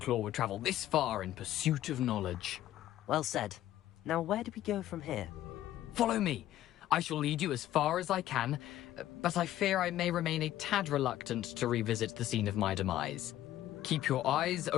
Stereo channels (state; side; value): quieter; right; 13.4 dB